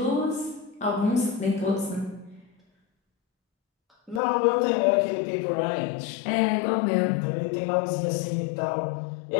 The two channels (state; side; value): drops out; right; at 4.2 s